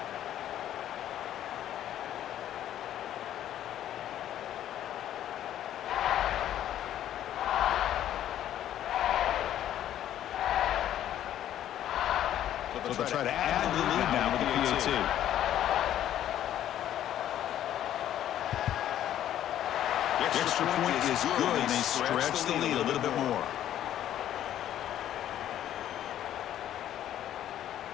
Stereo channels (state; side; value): quieter; right; 11.6 dB